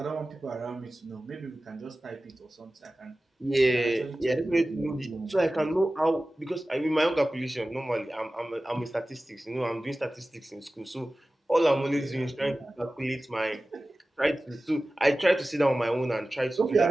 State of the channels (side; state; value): both; normal; correlation 0.96